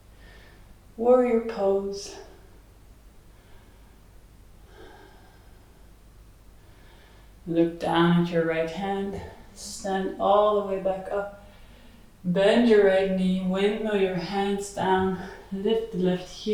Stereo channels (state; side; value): identical; both; correlation 1.00